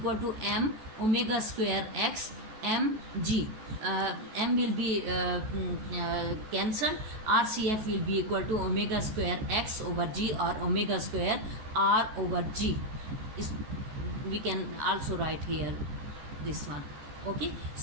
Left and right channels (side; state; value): left; late; 14 ms